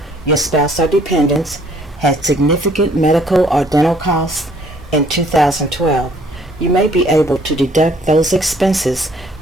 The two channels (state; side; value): normal; both; correlation 0.60